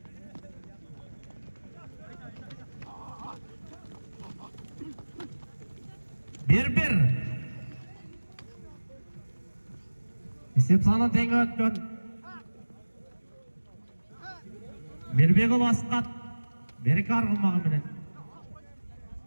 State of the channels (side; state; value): both; inverted; correlation -1.00